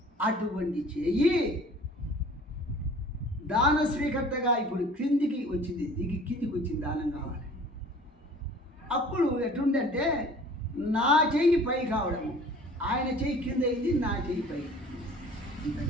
అటువంటి చెయ్యి దాన స్వీకర్తగా ఇప్పుడు క్రిందికి వచ్చింది, కిందికి వచ్చింది దానం కావాలి. అప్పుడు ఎట్లుందంటే నా చెయ్యి పై కావడము, ఆయన చెయ్యి కింద అయింది, నా చెయ్యి పై.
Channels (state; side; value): normal; both; correlation 0.48